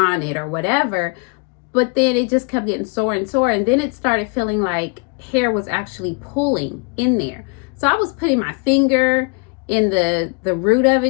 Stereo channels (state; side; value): quieter; right; 35.1 dB